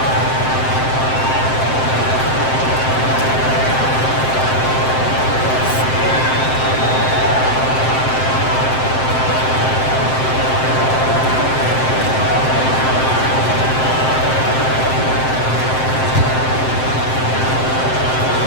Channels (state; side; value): late; right; 7.7 ms